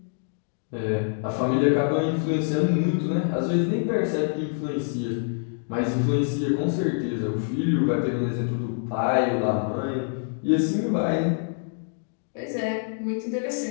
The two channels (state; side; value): silent; right; digital silence